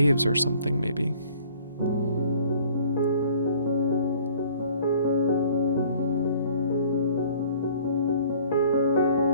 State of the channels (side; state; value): both; inverted; correlation -0.54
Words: or something, maybe.